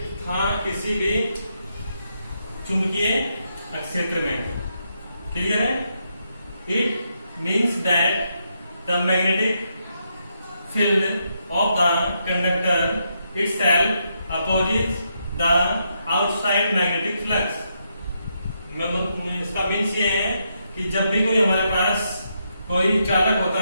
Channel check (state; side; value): inverted; both; correlation -0.80